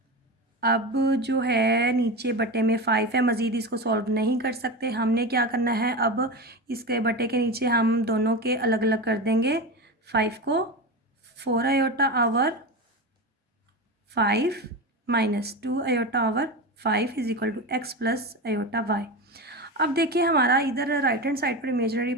अब जो है नीचे बटे में 5 है, मज़ीद इसको सॉल्व नहीं कर सकते। हमने क्या करना है, अब इसके बटे के नीचे हम दोनों के अलग अलग कर देंगे 5 को। 4 iota over 5 minus 2 iota over 5 is equal to x plus iota y. अब देखिए हमारा इधर राइट हैंड साइड पर इमेजिनरी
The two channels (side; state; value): both; normal; correlation 0.22